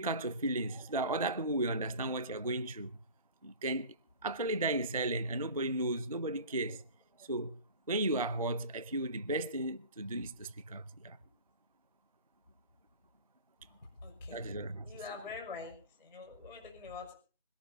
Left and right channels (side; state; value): both; inverted; correlation -0.39